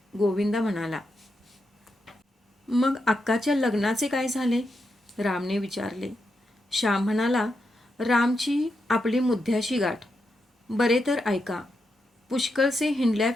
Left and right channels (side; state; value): both; normal; correlation 0.84